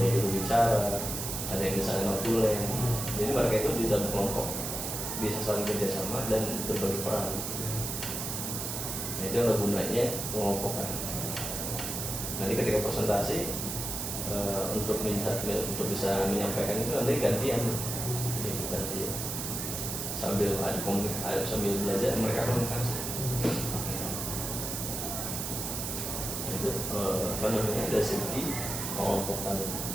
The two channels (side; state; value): right; noise; hiss, 4 dB below the sound